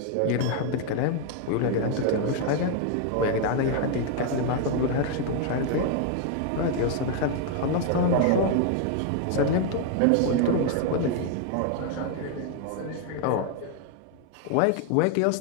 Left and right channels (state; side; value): different; both; correlation 0.00